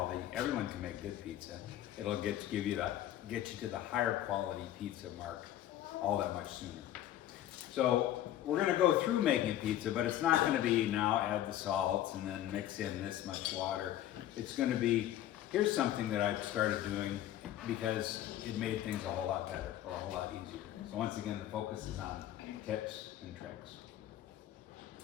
Everyone can make good pizza. It'll get you to the higher quality pizza mark all that much sooner. So we're going to go through making a pizza, but it's not going to be now add the salts and then mix in this much water. It's going to be, here's something that I've started doing because it made things a whole lot better or a whole lot easier. So once again, the focus is on tips and tricks.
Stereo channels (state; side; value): quieter; right; 12.5 dB